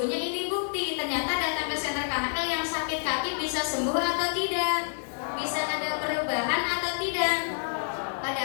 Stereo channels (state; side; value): silent; right; digital silence